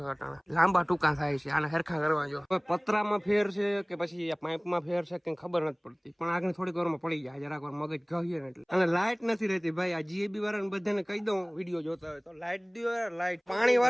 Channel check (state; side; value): identical; both; correlation 1.00